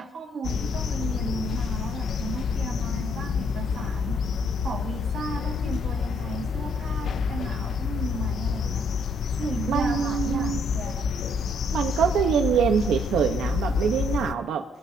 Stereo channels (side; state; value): both; normal; correlation 0.67